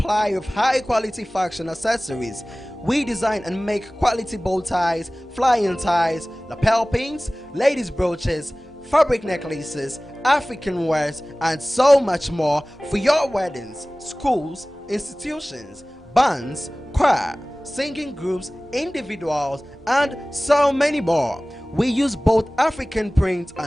of high-quality fashion accessories. We design and make quality bow ties, flying ties, lapel pins, ladies' brooches, fabric necklaces, African wares, and so much more for your weddings, schools, institutions, bands, choir, singing groups, individuals, and so many more. We use both African prints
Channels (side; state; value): both; normal; correlation 0.98